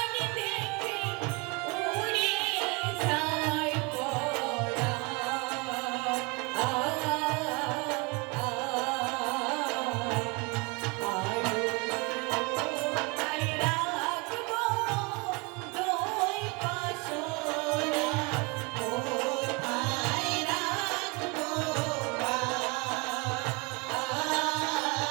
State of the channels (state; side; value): quieter; left; 29.3 dB